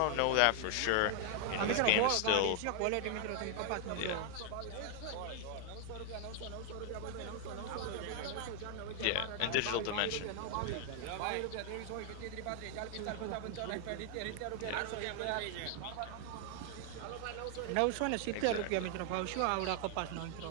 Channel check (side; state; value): both; different; correlation 0.00